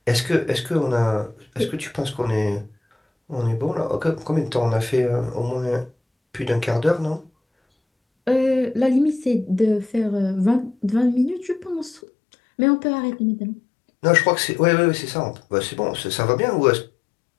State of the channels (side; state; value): right; drops out; at 12.0 s